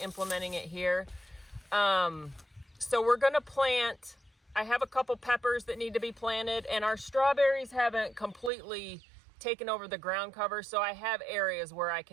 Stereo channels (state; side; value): drops out; left; at 8.5 s